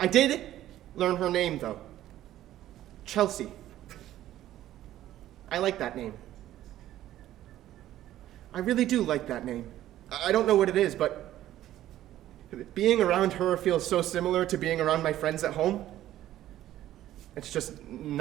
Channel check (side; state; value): left; quieter; 13.3 dB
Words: did learn her name, though. Chelsea. I like that name. I really do like that name. I don't know what it is, but being around her feels so similar to being around my friends at home. It's just